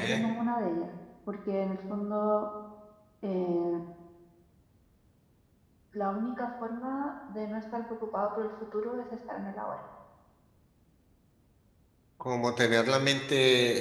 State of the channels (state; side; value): identical; both; correlation 1.00